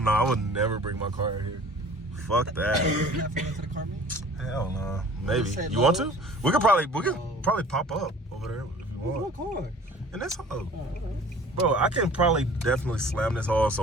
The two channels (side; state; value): both; normal; correlation 0.47